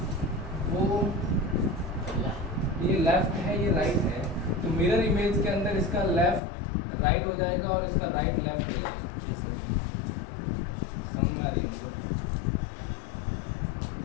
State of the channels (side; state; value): right; drops out; at 6.4 s